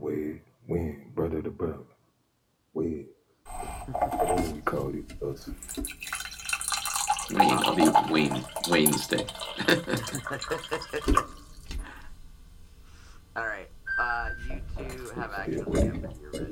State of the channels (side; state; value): both; identical; correlation 1.00